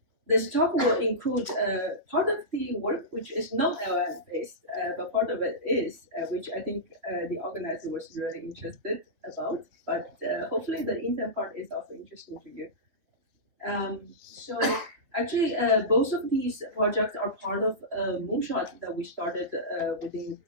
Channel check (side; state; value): left; late; 3.2 ms